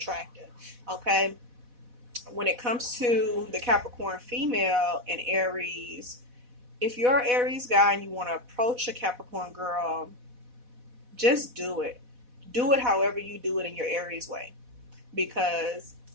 Okay? When it comes to the Capricorn female and Aries, if you're an Aries guy and you want to approach a Capricorn girl, just do it. Do it however you do it in your Aries way. Because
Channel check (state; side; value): late; left; 4.1 ms